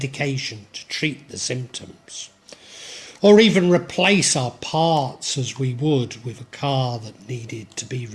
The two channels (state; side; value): identical; both; correlation 1.00